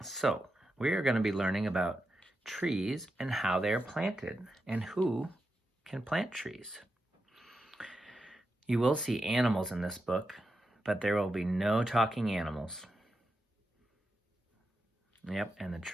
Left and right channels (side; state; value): both; normal; correlation 0.87